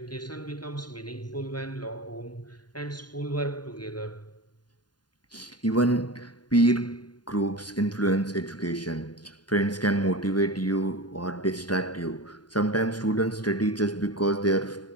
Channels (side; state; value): right; late; 0.70 ms